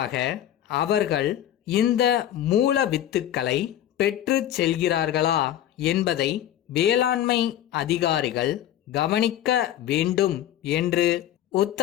அவர்கள் இந்த மூல வித்துக்களை பெற்று செல்கிறார்களா என்பதை வேளாண்மை அதிகாரிகள் கவனிக்க வேண்டும் என்று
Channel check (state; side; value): quieter; right; 11.7 dB